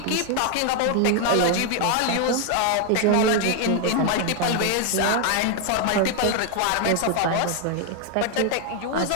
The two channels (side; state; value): both; different; correlation 0.01